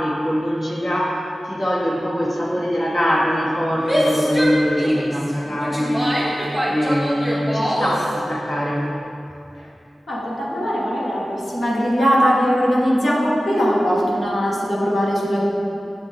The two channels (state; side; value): normal; both; correlation 0.95